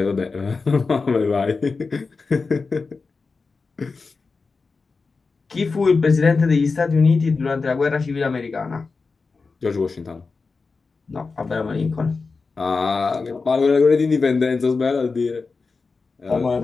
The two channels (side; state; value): right; quieter; 4.4 dB